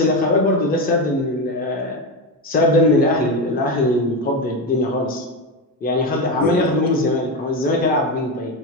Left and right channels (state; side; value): normal; both; correlation 0.15